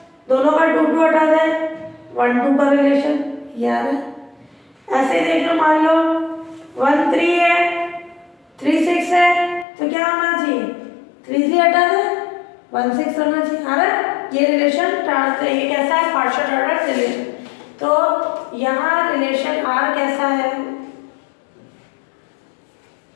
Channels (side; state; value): right; drops out; at 9.7 s